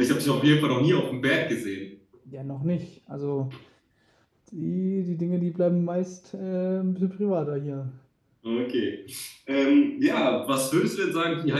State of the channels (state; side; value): identical; both; correlation 1.00